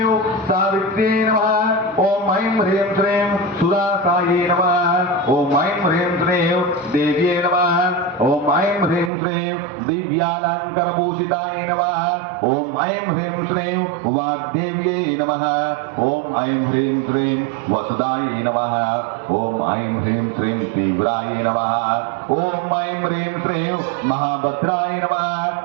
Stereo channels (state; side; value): drops out; left; at 9.1 s